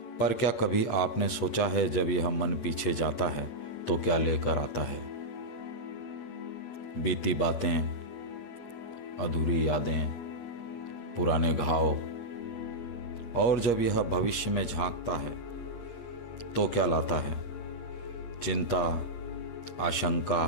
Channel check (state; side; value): late; right; 8.5 ms